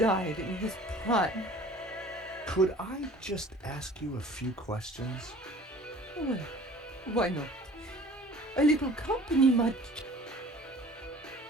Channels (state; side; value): normal; both; correlation 0.47